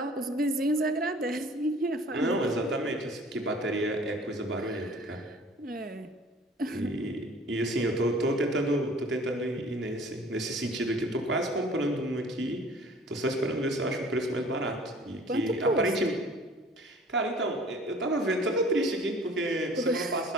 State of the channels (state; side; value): normal; both; correlation 0.50